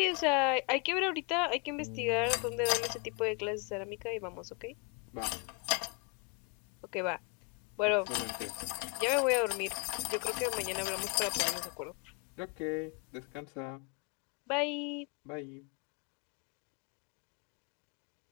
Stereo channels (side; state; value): right; quieter; 33.4 dB